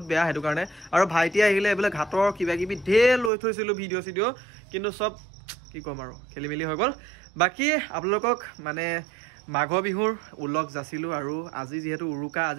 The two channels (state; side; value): drops out; left; at 3.3 s